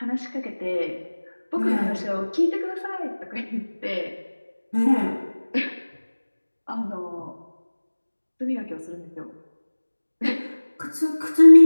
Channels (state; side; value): inverted; both; correlation -1.00